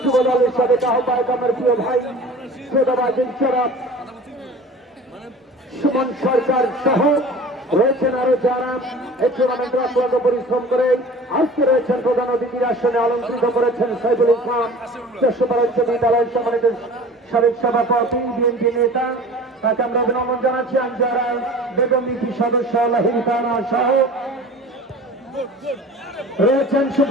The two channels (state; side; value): normal; both; correlation 0.41